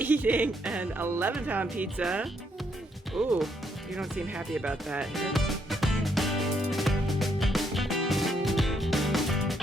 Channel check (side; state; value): both; normal; correlation 0.74